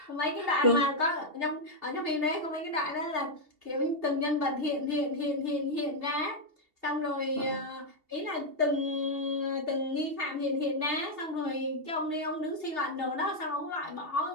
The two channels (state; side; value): late; left; 2.7 ms